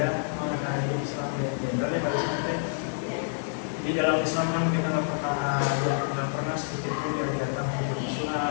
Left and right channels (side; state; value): right; silent; 58 dB below the other